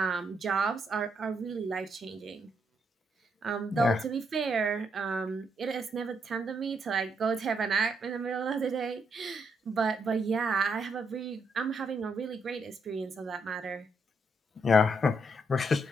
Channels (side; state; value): both; normal; correlation 0.76